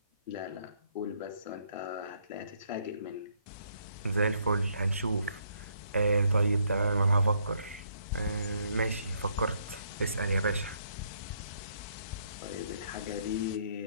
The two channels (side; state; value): both; inverted; correlation -0.70